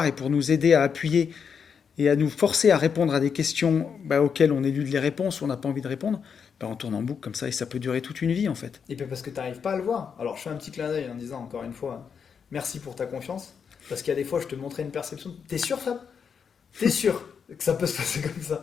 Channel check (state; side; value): quieter; right; 6.6 dB